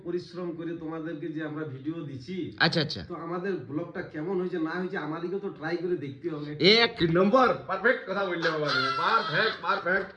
পরিশ্রম করে তোমাদেরকে যে আমরা ভিডিও দিছি, আচ্ছা আচ্ছা, তো আমাদের ব্লগটা কেমন হয়েছে না হয়েছে আমাদেরকে তো ট্রাই করে দেখতে হবে। 1 নম্বর পারফেক্ট কথা বললে বাবা, পারফেক্ট।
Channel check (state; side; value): identical; both; correlation 1.00